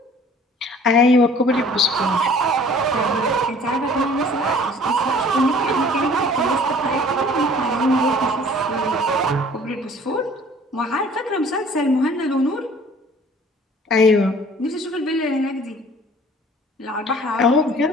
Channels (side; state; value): both; normal; correlation 0.52